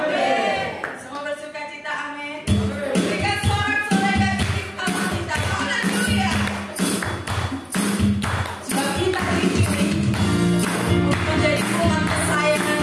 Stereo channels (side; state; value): both; identical; correlation 1.00